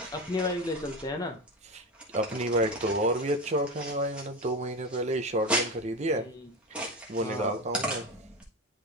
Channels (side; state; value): both; normal; correlation 0.21